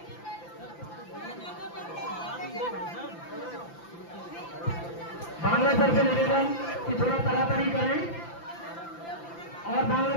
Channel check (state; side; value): late; right; 5.9 ms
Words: बांग्ला सर से निवेदन कि थोड़ा तड़ातड़ी करें और बांग्ला